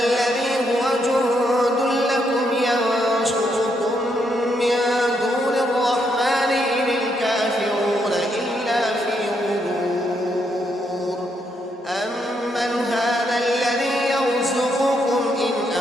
هو جند لكم ينصركم من دون الرحمن إن الكافرون إلا في غرور. أمن هذا الذي يرزقكم إن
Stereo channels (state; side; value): normal; both; correlation 0.77